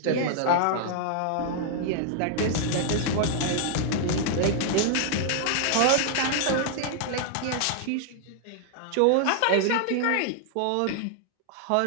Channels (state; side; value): different; both; correlation 0.00